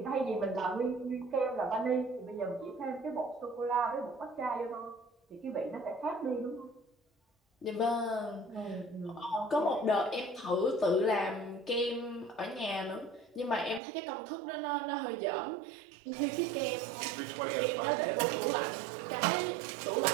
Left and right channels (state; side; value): drops out; left; at 13.8 s